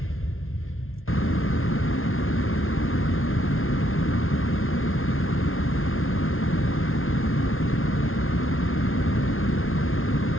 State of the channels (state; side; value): late; right; 0.60 ms